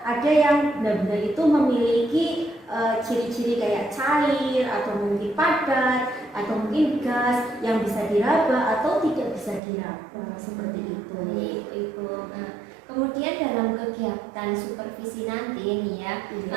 ada yang benda-benda itu memiliki ciri-ciri kayak cair atau mungkin padat atau mungkin gas yang bisa diraba atau tidak bisa diraba seperti itu. Itu. Kemudian dalam kegiatan supervisi nanti nih ya,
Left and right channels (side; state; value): left; drops out; at 9.6 s